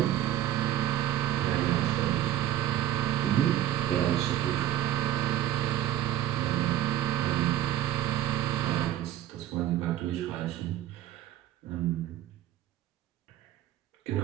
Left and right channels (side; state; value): left; quieter; 12.6 dB